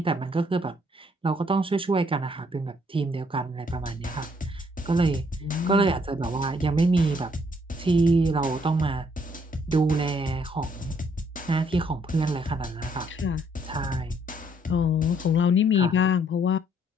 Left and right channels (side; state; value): both; normal; correlation 0.67